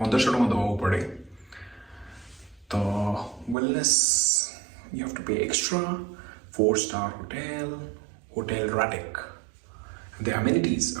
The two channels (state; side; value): drops out; left; at 3.6 s